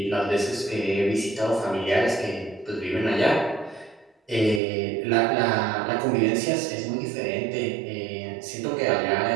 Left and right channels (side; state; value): left; drops out; at 4.6 s